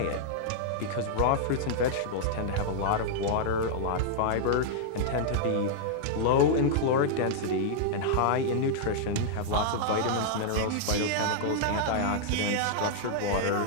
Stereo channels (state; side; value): different; both; correlation -0.01